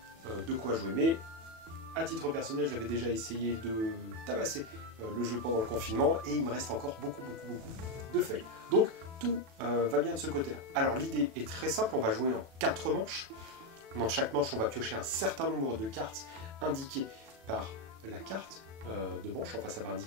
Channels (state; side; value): late; left; 36 ms